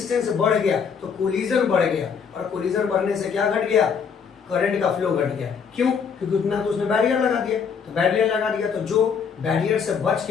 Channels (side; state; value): right; quieter; 6.5 dB